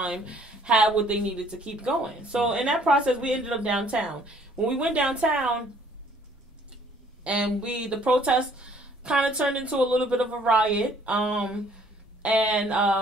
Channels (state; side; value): normal; both; correlation 0.60